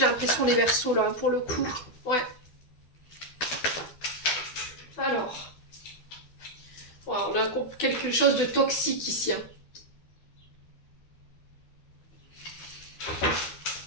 l'impression, les Verseaux, là, pour le coup. Ouais. Alors. Ouais, on a quelque chose de toxique ici. Hein.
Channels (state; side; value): late; right; 12 ms